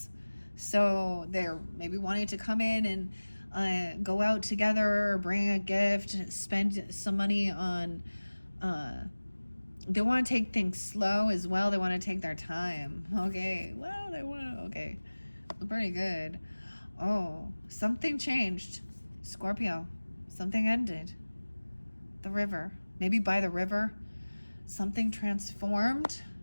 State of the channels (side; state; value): both; inverted; correlation -1.00